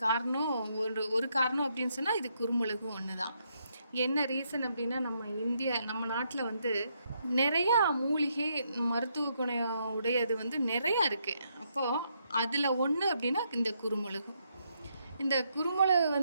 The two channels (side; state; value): both; inverted; correlation -0.77